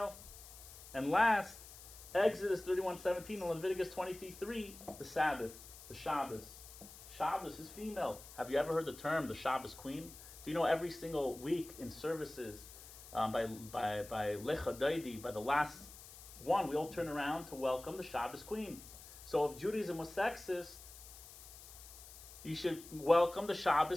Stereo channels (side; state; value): left; noise; hiss, 16 dB below the sound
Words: And last, Exodus 31:17 and Leviticus 23:3, the Sabbath, the Shabbos. Shabbos is female. Have you ever heard the term the Shabbos queen? Do you know every single week in services by Lecha Daidi, by the last one, we all turn around to welcome the Shabbos queen. So if Judaism was sexist, you should welcome the